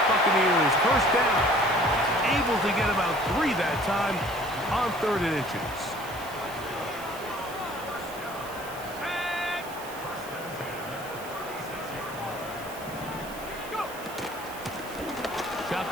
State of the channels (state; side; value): noise; right; hiss, 16 dB below the sound